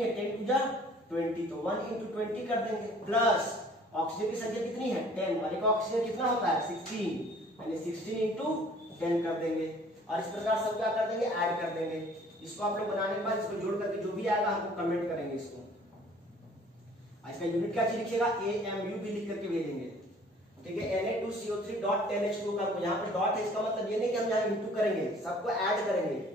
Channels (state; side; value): normal; both; correlation 0.54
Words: है, 10 2 20, तो 1 इंटू 20 कर देंगे, प्लस ऑक्सीजन की संख्या कितनी है, 10, वाले का ऑक्सीजन कितना होता है, 16, यानी 16 इंटू 10 कर देंगे। और इस प्रकार सब क्या कर देंगे, ऐड कर देंगे। इसको आप लोग बनाने के बाद इसको जोड़ करके जो भी आएगा हमको कमेंट करेंगे इसको। इसका यूनिट क्या चीज लिखिएगा, AMU भी लिख करके भेजेंगे, ठीक है। Na2CO3 डॉट 10H2 का, यहाँ पे डॉट है, इसका मतलब ये नहीं कि हम यहाँ इंटू करेंगे, सबको ऐड करेंगे।